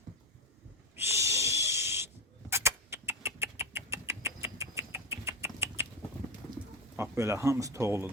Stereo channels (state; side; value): normal; both; correlation 0.18